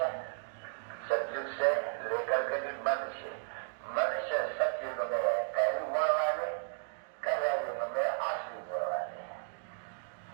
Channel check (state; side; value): silent; left; digital silence